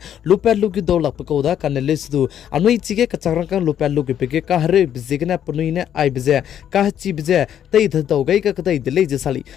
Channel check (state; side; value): quieter; right; 9.9 dB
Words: lupel lugyu do lak pakoda kanele sudu anui chige kachagrangkang lupel lugyu pege ka hare bizigna punuine ai bije ka chi bije tei dhau gai ka kadai dile je sali